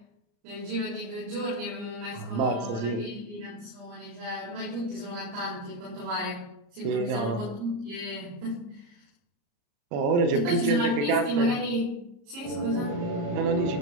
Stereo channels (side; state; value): left; late; 34 ms